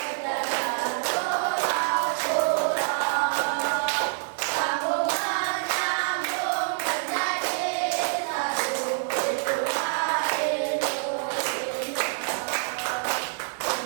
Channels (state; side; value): silent; left; digital silence